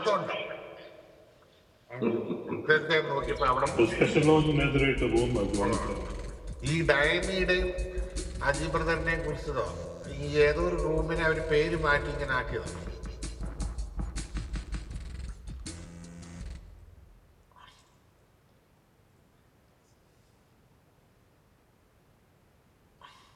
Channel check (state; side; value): identical; both; correlation 1.00